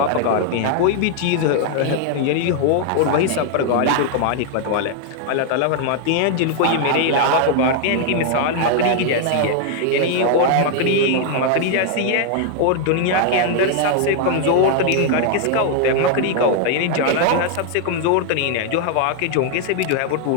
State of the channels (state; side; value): different; both; correlation 0.00